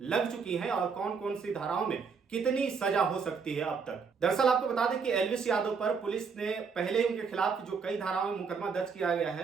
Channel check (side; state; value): left; quieter; 5.6 dB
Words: लग चुकी हैं और कौन कौन सी धाराओं में कितनी सजा हो सकती है अब तक। दरअसल आपको बता दें कि एल्विश यादव पर पुलिस ने पहले ही उनके खिलाफ जो कई धाराओं में मुकदमा दर्ज किया गया